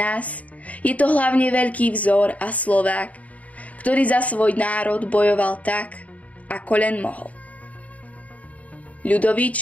je to hlavne veľký vzor a Slovák, ktorý za svoj národ bojoval tak, ako len mohol. Ľudovít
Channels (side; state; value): right; late; 0.070 ms